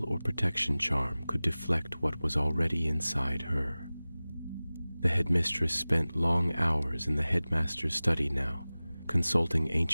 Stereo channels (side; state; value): both; inverted; correlation -0.98